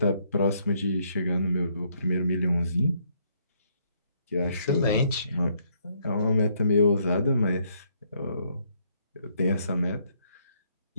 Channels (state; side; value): inverted; both; correlation -0.70